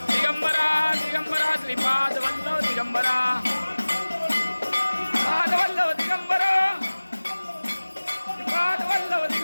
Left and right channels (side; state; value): both; inverted; correlation -1.00